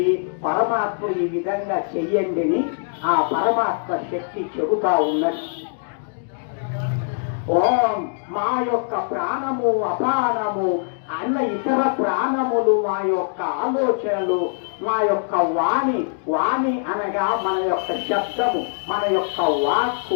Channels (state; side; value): silent; right; digital silence